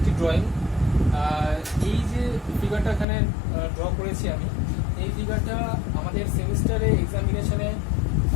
ড্রয়িং। এই যে ফিগারটা এখানে ড্র করেছি আমি, এই ফিগারটা আমাদের সেমিস্টারে এক্সামিনেশনে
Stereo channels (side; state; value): right; drops out; at 3.1 s